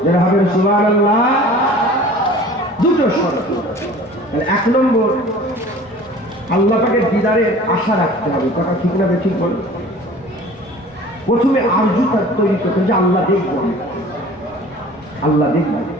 যারা হবে সুবহানাল্লাহ। দুটো শর্ত। এক নম্বর, আল্লাহ পাকের দিদারের আশা রাখতে হবে। কথা ঠিক না ঠিক বল? প্রথমে আরজু তৈরি করতে, যে আল্লাহ দেখবো, আল্লাহ দেখবো।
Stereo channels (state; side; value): normal; both; correlation 0.45